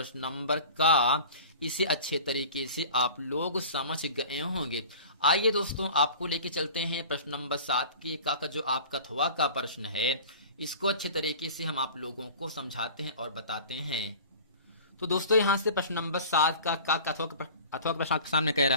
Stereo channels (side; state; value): both; inverted; correlation -0.41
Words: इसे अच्छे तरीके से आप लोग समझ गए होंगे। आइए दोस्तों, आपको लेके चलते हैं प्रश्न नंबर 7 के का जो आपका थवा का प्रश्न है, इसको अच्छे तरीके से हम आप लोगों को समझाते हैं और बताते हैं। तो दोस्तों यहाँ से प्रश्न नंबर 7 का अथवा प्रश्न आपके सामने कह